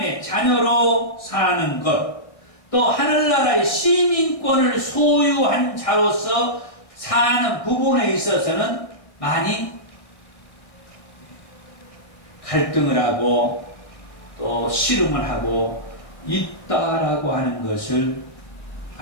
자녀로 사는 것, 또 하늘나라의 시민권을 소유한 자로서 사는 부분에 있어서는 많이 갈등을 하고 또 씨름을 하고 있다라고 하는 것을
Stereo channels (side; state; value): right; late; 1.6 ms